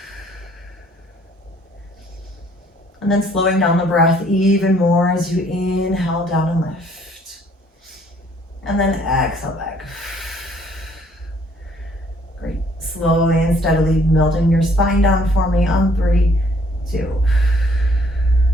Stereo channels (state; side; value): normal; both; correlation 0.62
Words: And then slowing down the breath even more as you inhale down and lift. And then exhale back. Great. Slowly and steadily melting your spine down for me on 3, 2,